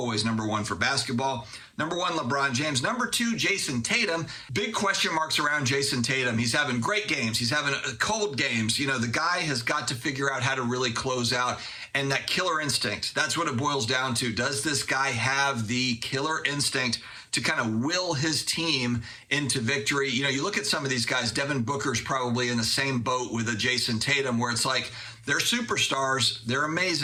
number one for basketball. Number one, LeBron James. Number two, Jason Tatum. Big question marks around Jason Tatum. He's having great games. He's having cold games. You know, the guy has got to figure out how to really close out. And that killer instinct, that's what it boils down to. Does this guy have the killer instinct to kind of will his team into victory? You know, you look at some of these guys, Devin Booker's probably in the same boat with a Jason Tatum, where it's like, they're superstars, they're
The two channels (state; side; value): identical; both; correlation 1.00